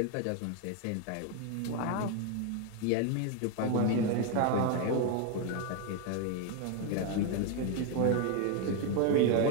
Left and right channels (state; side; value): different; both; correlation 0.01